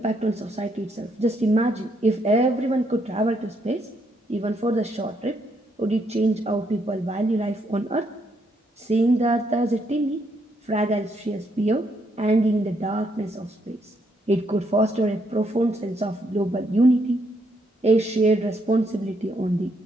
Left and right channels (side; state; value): both; normal; correlation 0.74